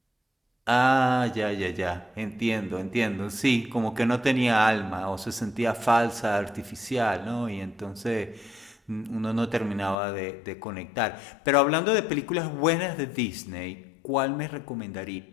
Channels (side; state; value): right; drops out; at 10.0 s